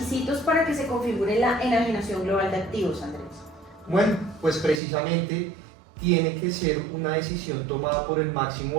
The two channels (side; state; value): left; drops out; at 4.8 s